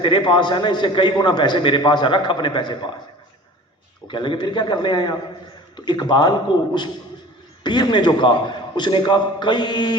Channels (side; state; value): both; normal; correlation 0.42